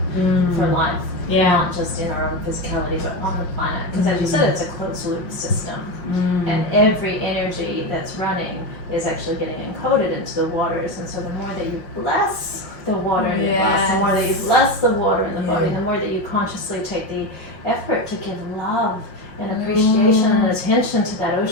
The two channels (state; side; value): late; right; 5.7 ms